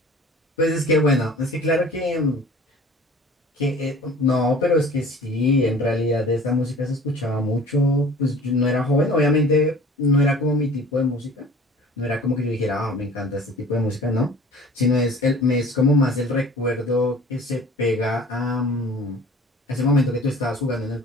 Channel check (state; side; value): normal; both; correlation 0.46